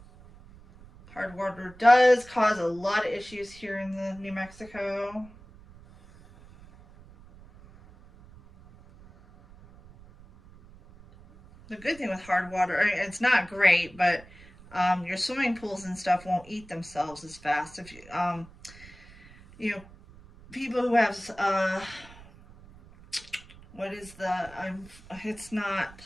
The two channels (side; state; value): right; noise; rumble, 22 dB below the sound